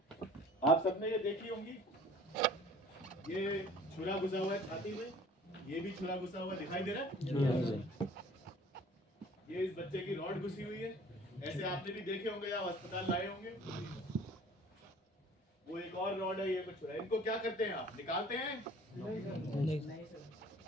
आप सबने ये देखी होंगी, ये छुरा घुसा हुआ है छाती में, ये भी छुरा घुसा हुआ दिखाई दे रहा है। ये इस बच्चे की रॉड घुसी हुई है, ऐसे आपने भी देखे होंगे, आप अस्पताल लाए होंगे। वो एक और रॉड है, ये कुछ छुरा। इनको क्या करते हैं आप? निकालते हैं? नहीं।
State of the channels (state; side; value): normal; both; correlation 0.49